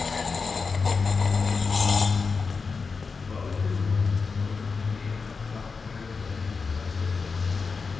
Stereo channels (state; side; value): quieter; right; 4.8 dB